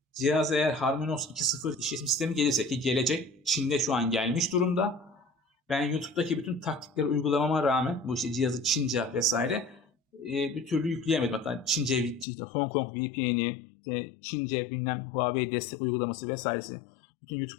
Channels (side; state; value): right; drops out; at 12.2 s